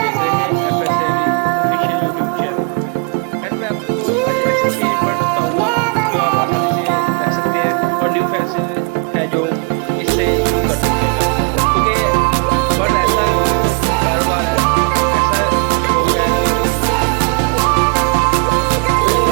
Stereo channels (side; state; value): left; quieter; 34.7 dB